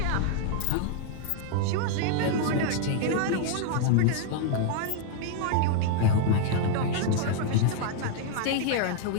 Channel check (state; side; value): different; both; correlation 0.00